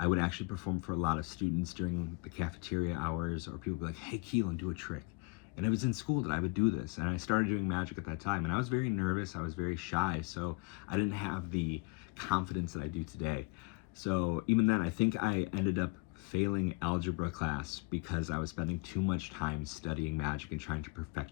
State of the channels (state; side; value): quieter; right; 27.5 dB